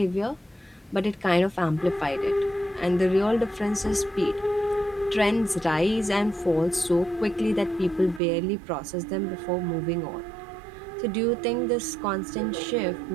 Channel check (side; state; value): left; drops out; at 8.2 s